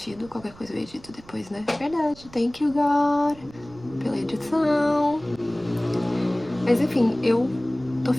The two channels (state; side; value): noise; right; rumble, 22 dB below the sound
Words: Qualquer coisa eu edito depois, né? Verdade. Thank you, God, pela edição. Mas enfim, eu tô